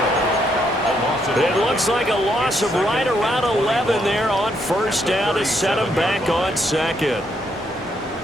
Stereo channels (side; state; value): both; normal; correlation 0.75